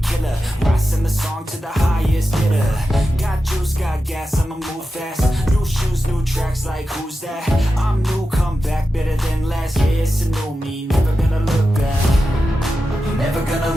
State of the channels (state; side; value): normal; both; correlation 0.91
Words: killer. Rising the song to the highest bidder. Got juice, got gas, I'ma move fast. New shoes, new tracks, like who's that? I'm new, come back, better than last. Yeah, it's a new me, never gonna look back. Never gonna